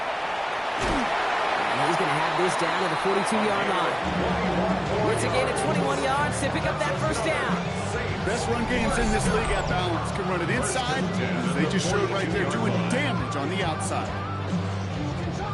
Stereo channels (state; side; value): identical; both; correlation 1.00